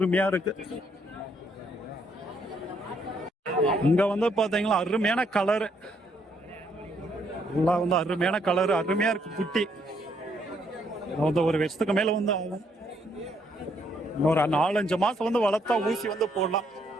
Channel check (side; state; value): both; normal; correlation 0.71